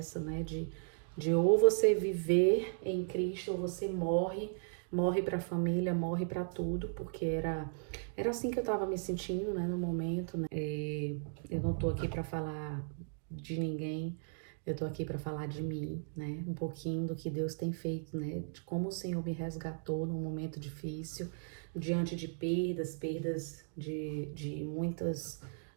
né? De ou você viver em Cristo ou você morre para a família, morre para tudo, porque era assim que eu estava me sentindo, né, no momento, né? Eu não tô aqui para falar de ninguém, eu tô aqui para falar de mim, né? Um pouquinho do que Deus tem feito, né? De como o Senhor me resgatou num momento difícil, diante de perdas de muitas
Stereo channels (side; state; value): left; silent; digital silence